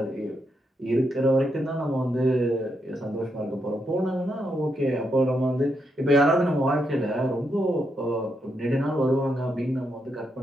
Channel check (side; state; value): both; normal; correlation 0.81